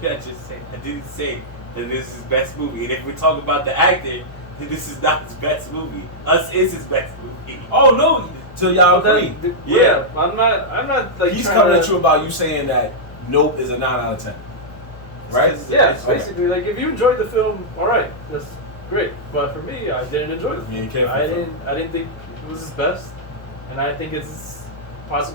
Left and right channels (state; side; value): late; right; 1.2 ms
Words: did I just say? I didn't say that this is his best movie. And if we talk about the actor, then this is not his best movie. Us is his best movie. Oh no! So y'all agree? Yeah. I'm not like. He's coming at you about you saying that Nope is a 9 out of 10. Right? Yeah, basically. Like, if you enjoyed the film, all right, that's great. But for me, I didn't enjoy the film. I didn't think it was his best, and I think it's